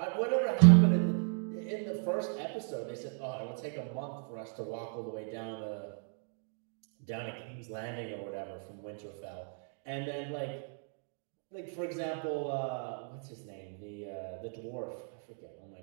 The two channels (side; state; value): left; silent; 54 dB below the other